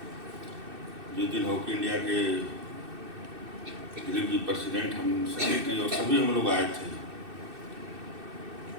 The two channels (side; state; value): left; late; 2.6 ms